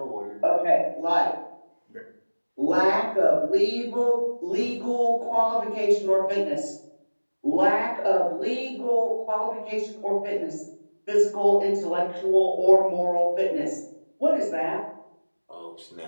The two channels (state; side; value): inverted; both; correlation -1.00